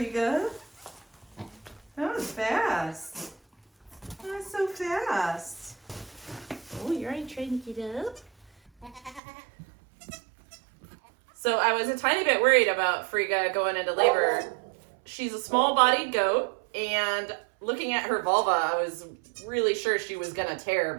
That was fast. That was so fast. Oh, you're already trying to get up? So I was a tiny bit worried about Frigga going into labor. She's a small-bodied goat, and looking at her vulva, I was really sure she was gonna tear,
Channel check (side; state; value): left; drops out; at 9.2 s